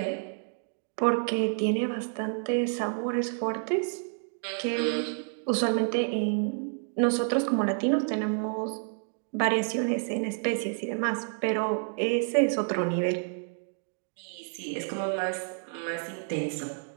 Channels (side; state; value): left; silent; 58 dB below the other